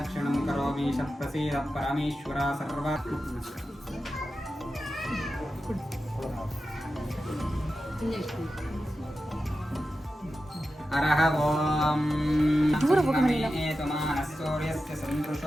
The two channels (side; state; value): both; normal; correlation 0.92